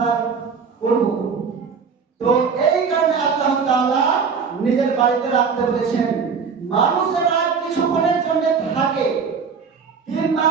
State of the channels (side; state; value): left; quieter; 5.8 dB